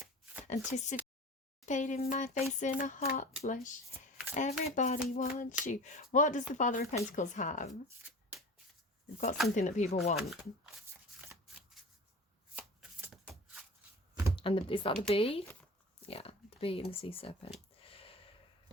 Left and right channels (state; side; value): normal; both; correlation 0.37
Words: anticipating my face in a hot flush. Everybody wants you. What does the Father of Pentacles have? They've got something that people want. And is that the bee? Yeah, the bee and the sea serpent.